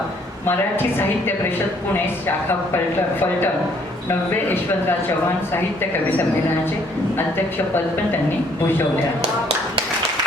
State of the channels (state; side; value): normal; both; correlation 0.64